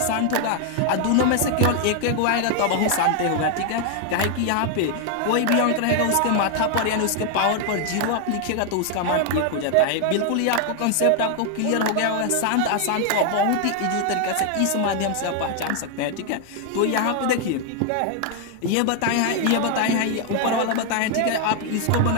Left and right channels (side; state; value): both; different; correlation 0.00